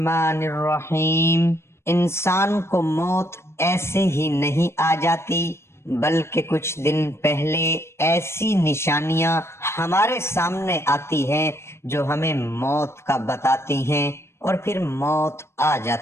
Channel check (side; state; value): right; late; 0.13 ms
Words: الرحیم۔ انسان کو موت ایسے ہی نہیں آ جاتی، بلکہ کچھ دن پہلے ایسی نشانیاں ہمارے سامنے آتی ہیں جو ہمیں موت کا بتاتی ہیں، اور پھر موت آ